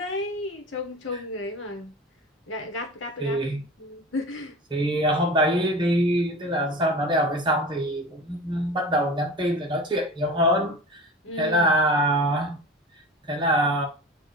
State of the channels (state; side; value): normal; both; correlation 0.34